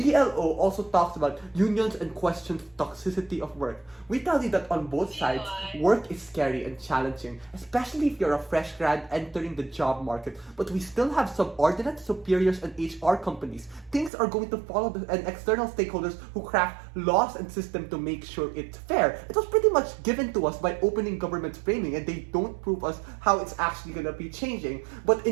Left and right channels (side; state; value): left; drops out; at 14.1 s